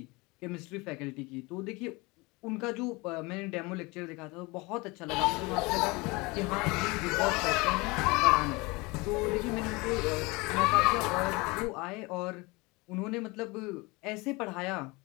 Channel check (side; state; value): right; quieter; 24.8 dB